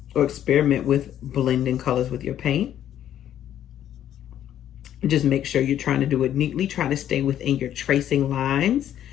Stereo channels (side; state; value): right; quieter; 10.9 dB